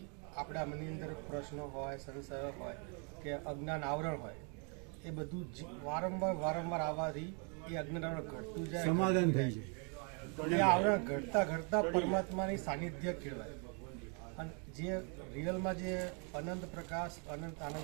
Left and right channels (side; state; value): left; quieter; 37.2 dB